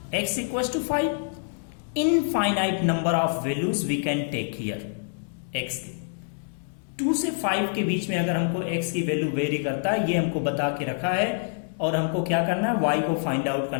x equals to 5, infinite number of values we can take here x के। 2 से 5 के बीच में अगर हमको x की वैल्यू वेरी करता है, ये हमको बता के रखा है और हमको क्या करना है, y को फाइंड आउट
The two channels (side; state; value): right; silent; digital silence